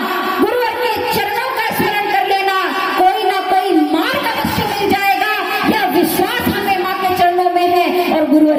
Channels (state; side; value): identical; both; correlation 1.00